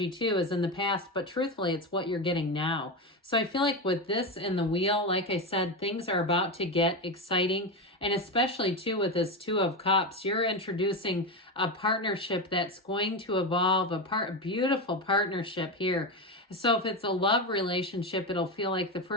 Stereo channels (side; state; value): both; normal; correlation 0.15